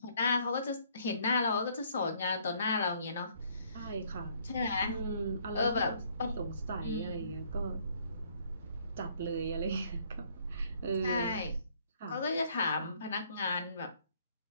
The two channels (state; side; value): inverted; both; correlation -0.64